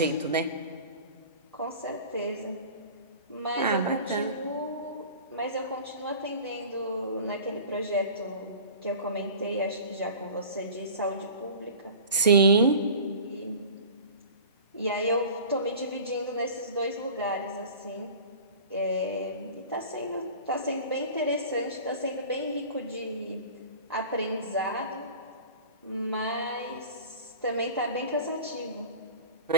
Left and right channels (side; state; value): both; inverted; correlation -0.40